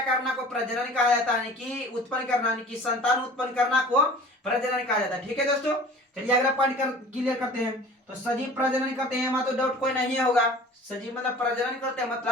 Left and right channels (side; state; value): both; normal; correlation 0.44